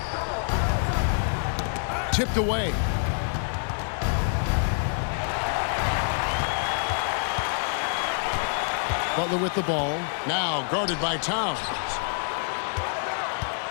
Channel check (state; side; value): silent; right; 61 dB below the other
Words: Tipped away. Butler with the ball. Now guarded by Towns.